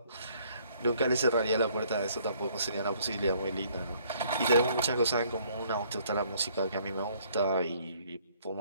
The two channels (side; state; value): both; inverted; correlation -0.62